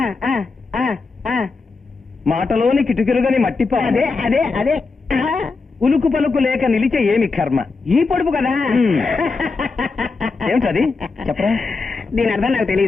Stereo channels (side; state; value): right; quieter; 4.2 dB